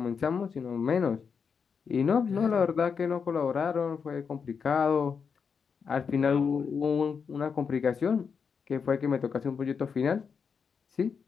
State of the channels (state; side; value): quieter; right; 6.1 dB